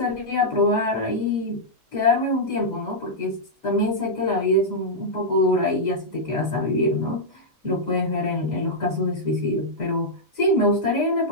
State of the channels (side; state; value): both; normal; correlation -0.07